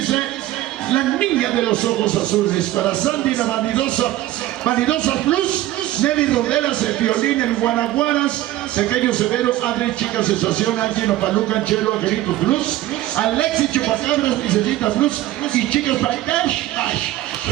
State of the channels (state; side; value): quieter; left; 15.0 dB